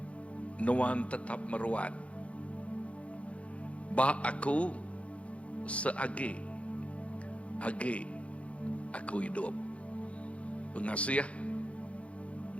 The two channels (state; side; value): late; right; 0.063 ms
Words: nuan tetap meruat. Ba aku seagi, agi aku hidup. Pengasih